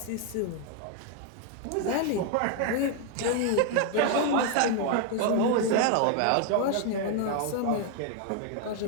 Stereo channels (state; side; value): different; both; correlation 0.00